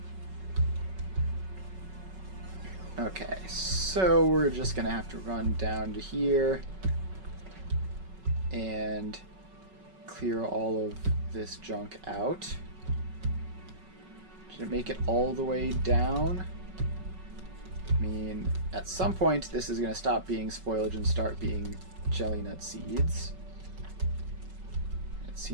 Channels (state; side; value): late; left; 5.3 ms